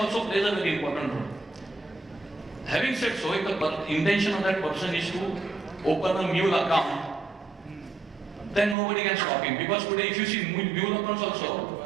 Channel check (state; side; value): drops out; left; at 8.8 s